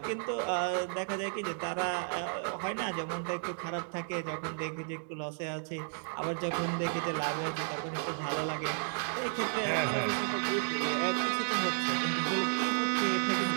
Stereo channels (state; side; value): silent; left; 56 dB below the other